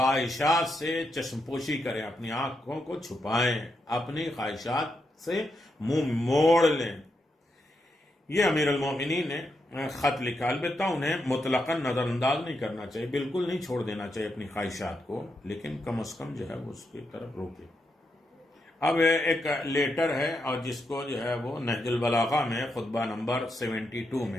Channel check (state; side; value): normal; both; correlation 0.83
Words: سے چشم پوشی کریں، اپنی آنکھوں کو چھپائیں، اپنی خواہشات سے منہ موڑ لیں۔ یہ امیر المومنین نے خط لکھا، البتہ انہیں مطلقاً نظر انداز نہیں کرنا چاہیے، بالکل نہیں چھوڑ دینا چاہیے اپنی خواہشات کو، لیکن کم از کم جو ہے وہ اس کی طرف روکے۔ اب ایک لیٹر ہے، اور جس کو جو ہے وہ نہج البلاغہ میں خطبہ نمبر 72